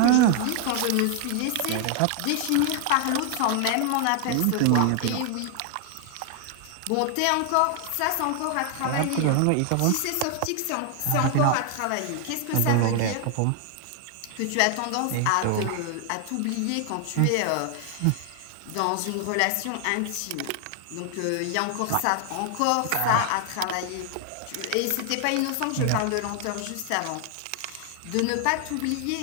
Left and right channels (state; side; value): different; both; correlation 0.00